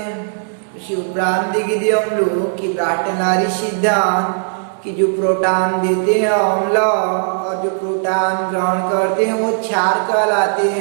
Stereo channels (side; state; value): left; silent; 68 dB below the other